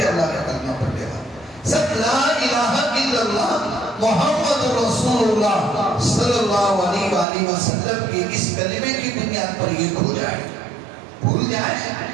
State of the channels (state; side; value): drops out; left; at 7.2 s